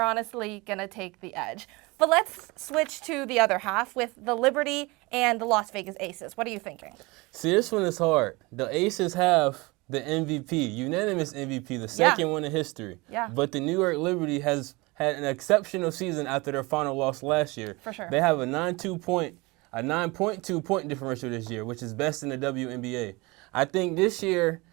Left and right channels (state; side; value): quieter; left; 24.5 dB